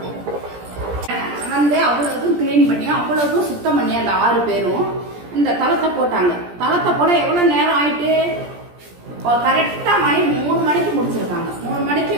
வந்து அவ்வளவுக்கும் கிளீன் பண்ணி அவ்வளவுக்கும் சுத்தம் பண்ணி அந்த 6 பேரும் இந்த தளத்தை போட்டாங்க. தளத்தை போட எவ்வளவு நேரம் ஆயிட்டு, கரெக்டா 3 மணிக்கு முடிச்சிருக்காங்க. 3 மணிக்கு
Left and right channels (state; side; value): late; left; 17 ms